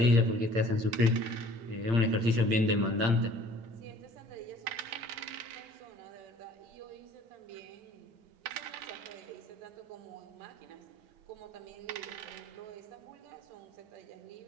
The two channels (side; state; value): left; late; 8.8 ms